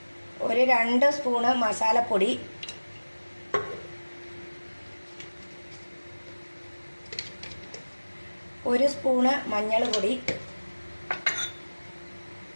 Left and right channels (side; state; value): both; inverted; correlation -1.00